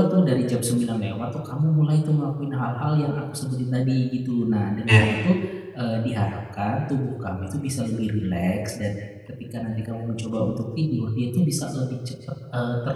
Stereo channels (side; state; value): both; identical; correlation 1.00